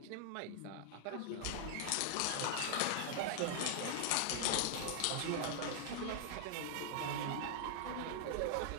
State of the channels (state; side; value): different; both; correlation -0.01